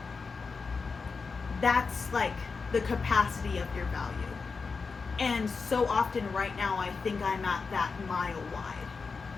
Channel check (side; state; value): right; quieter; 4.8 dB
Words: that's like the capacity of your value. And so often right now I think I'm at that mile wide